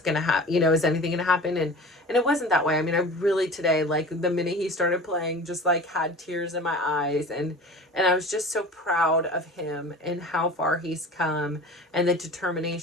gonna happen, is anything gonna happen? And it wasn't that way. I mean, I really, today, like, the minute he started playing, just like had tears in my eyes, and I was just so proud of him and how far he's come, and the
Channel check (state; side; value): normal; both; correlation 0.38